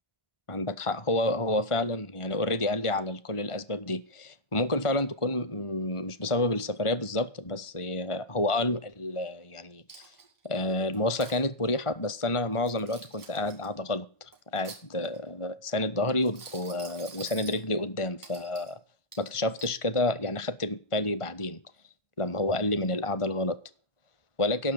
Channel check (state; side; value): late; right; 1.4 ms